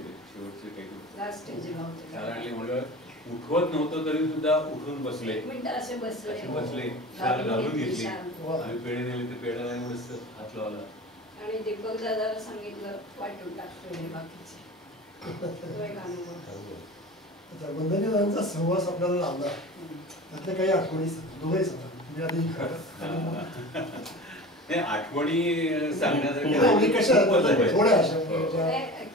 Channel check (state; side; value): normal; both; correlation 0.35